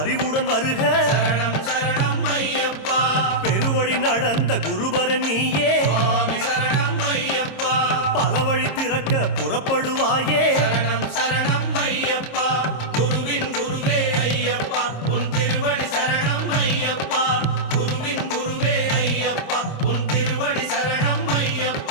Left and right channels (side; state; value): right; late; 26 ms